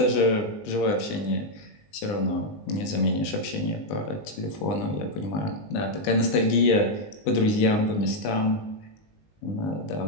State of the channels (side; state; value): right; late; 19 ms